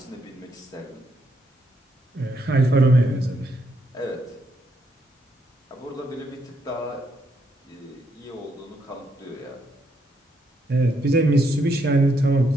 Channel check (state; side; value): normal; both; correlation 0.76